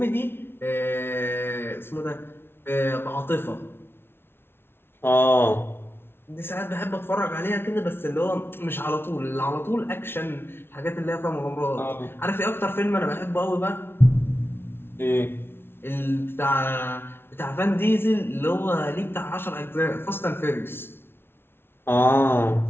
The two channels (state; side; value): late; right; 0.11 ms